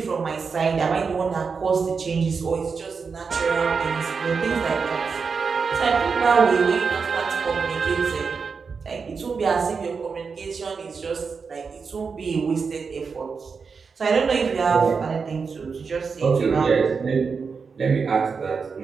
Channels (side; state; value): left; quieter; 5.3 dB